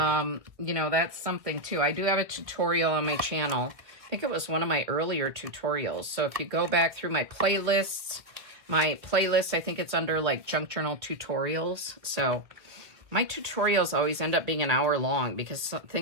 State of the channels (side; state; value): left; late; 1.7 ms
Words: know, that's something too. I do have a tutorial on my channel. I think it was one of my earlier tutorials. So if you go back through my playlist, I think it's under like junk journal tutorials. So my tutorials always end up being an hour long because some